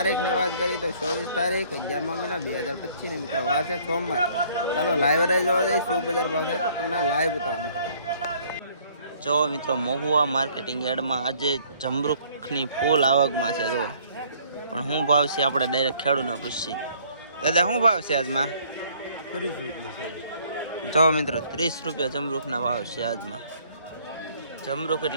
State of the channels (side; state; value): both; inverted; correlation -0.60